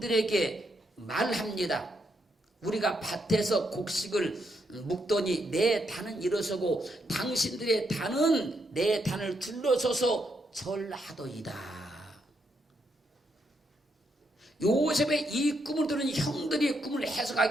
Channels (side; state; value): both; normal; correlation 0.78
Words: 말합니다. 우리가 밭에서 곡식을 묵더니 내 단은 일어서고 당신들의 단은 내 단을 둘러서서 절하더이다. 요셉의 이 꿈을 들은 형들이 꿈을